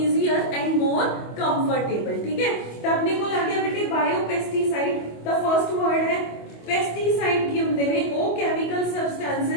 and more comfortable। ठीक है, ਤਾਂ ਆਪਣੇ ਕੋਲ ਆ ਗਿਆ ਬੇਟੇ ਬਾਇਓ ਪੈਸਟੀਸਾਈਡ। ਤਾਂ ਫਰਸਟ ਵਰਡ ਹੈ ਪੈਸਟੀਸਾਈਡ। ਕੀ ਹੁੰਦੇ ਨੇ? ਉਹ ਕੈਮੀਕਲ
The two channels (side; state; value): right; late; 25 ms